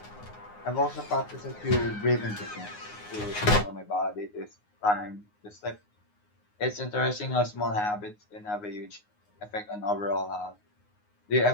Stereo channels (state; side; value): late; right; 9.6 ms